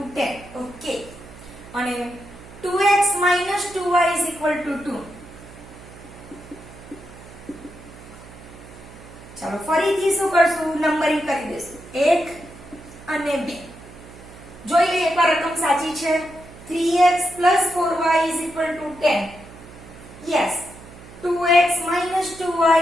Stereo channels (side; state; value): right; noise; hum, 18 dB below the sound